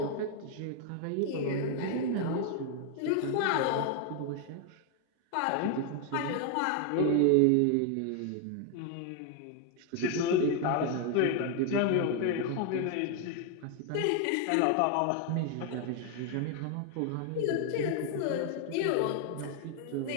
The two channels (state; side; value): different; both; correlation 0.00